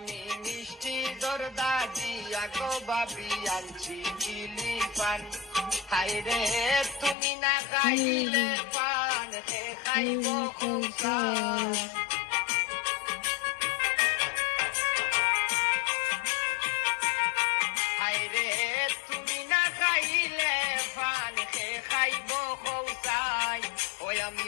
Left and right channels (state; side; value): drops out; right; at 7.2 s